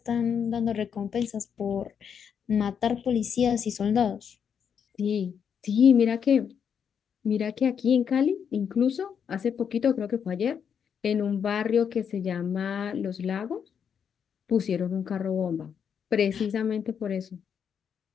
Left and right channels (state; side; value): quieter; right; 7.5 dB